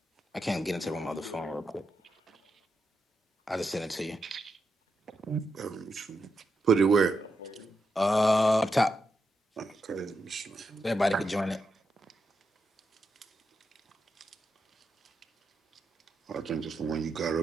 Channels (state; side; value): normal; both; correlation 0.85